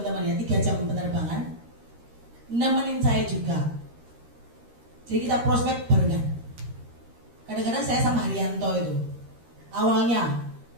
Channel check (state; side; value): late; left; 13 ms